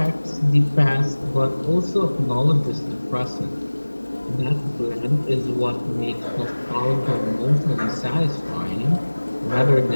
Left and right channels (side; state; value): both; inverted; correlation -1.00